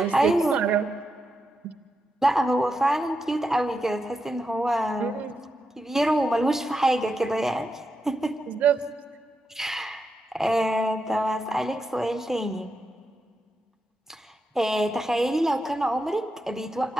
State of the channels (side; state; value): both; normal; correlation 0.86